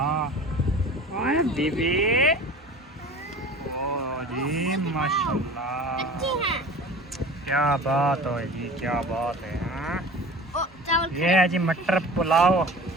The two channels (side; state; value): both; normal; correlation 0.39